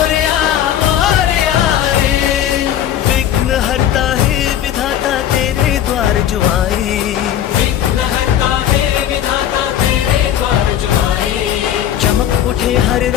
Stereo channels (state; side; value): quieter; right; 10.6 dB